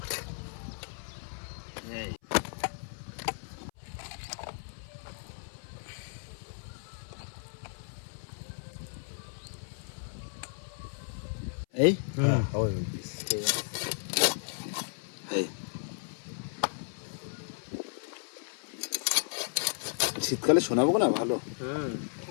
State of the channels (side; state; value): right; silent; 55 dB below the other